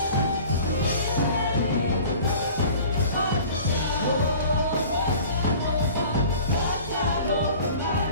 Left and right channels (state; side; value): inverted; both; correlation -0.45